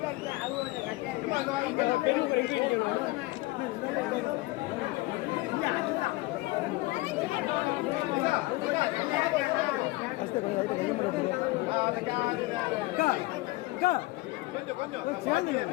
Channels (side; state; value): right; quieter; 20.8 dB